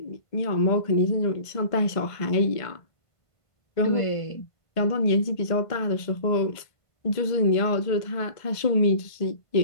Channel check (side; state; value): right; late; 1.5 ms